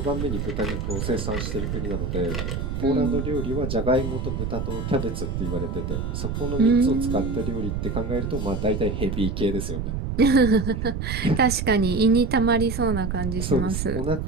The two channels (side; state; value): right; noise; rumble, 3 dB below the sound